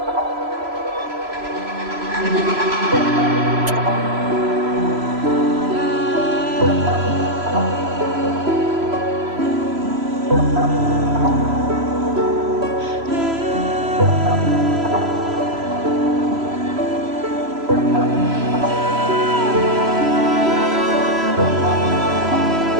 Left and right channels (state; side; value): late; left; 3.0 ms